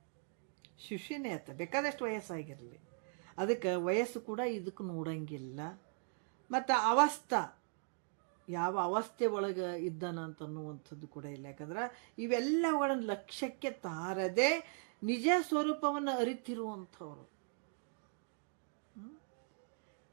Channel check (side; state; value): left; silent; 52 dB below the other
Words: ಆತ, ಬೇಕಾದಷ್ಟು ವಯಸ್ಸಾಗಿರಲಿ. ಅದಕ್ಕೆ ವಯಸ್ಸು ಕೂಡ ಇದಕ್ಕೆ ನೋಡಂಗಿಲ್ಲ. ಮತ್ತು ಅವಸ್ಥಾ, ಯಾವ ಅವಸ್ಥೆ ಒಳಗೆ ಇದ್ದಾನಂತ ಅನ್ನುವಂಥದ್ದು ಕೂಡ ಇಲ್ಲ. ಯಾಕಂದ್ರೆ ಇವೆಲ್ಲವುಗಳನ್ನು ಲಕ್ಷ್ಯಕ್ಕೆ ತಾರದೆ ನಿಜ ಸ್ವರೂಪವನ್ನು ಅರಿತಿರುವಂಥವ್ರು.